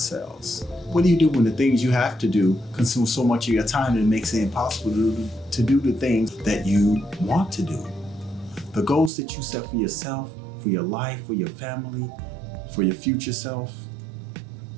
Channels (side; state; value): left; drops out; at 9.1 s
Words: What do you do when the things you have to do consume so much of your time that it makes it impossible to do the things that you want to do? The goals that you set for yourself, for your life, for your family, for your future self,